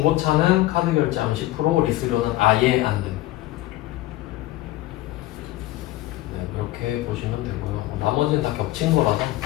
카드 결제하면 10%, 리스료는 아예 안 됨. 네, 그렇게 보시면 되고요. 나머지는 다 겹친 거라서.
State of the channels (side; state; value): right; quieter; 16.4 dB